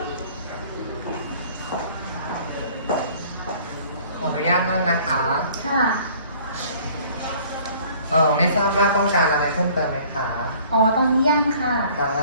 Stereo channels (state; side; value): inverted; both; correlation -0.53